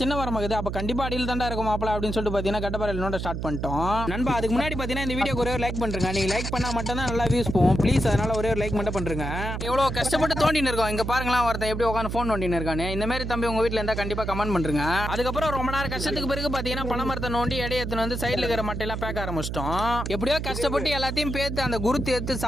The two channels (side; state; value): right; noise; hum, 4 dB below the sound